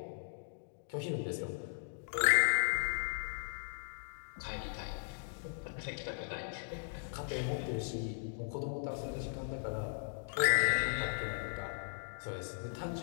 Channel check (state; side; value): silent; right; digital silence